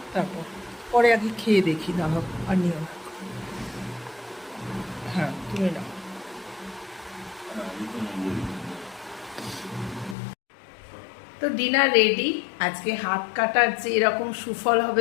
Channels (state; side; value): drops out; right; at 10.2 s